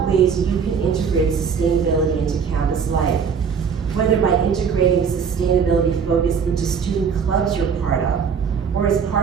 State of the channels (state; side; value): quieter; left; 6.5 dB